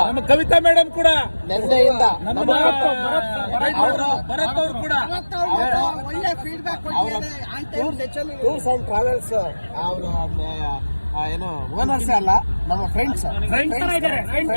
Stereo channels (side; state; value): both; inverted; correlation -1.00